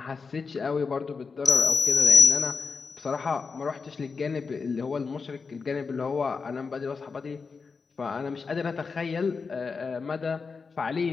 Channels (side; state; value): right; quieter; 4.9 dB